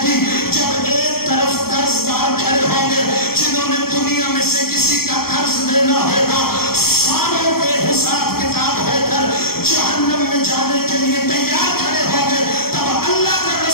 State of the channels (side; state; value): right; late; 0.94 ms